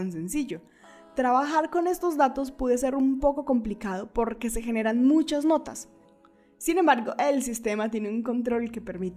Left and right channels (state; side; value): identical; both; correlation 1.00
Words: sencillo. Trabajar con estos datos puede ser un poco complicado porque se generan muchas notas. Sin embargo, el sistema tiene un control que